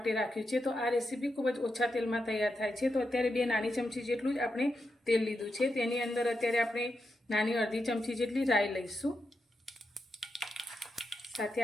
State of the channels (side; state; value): both; normal; correlation 0.86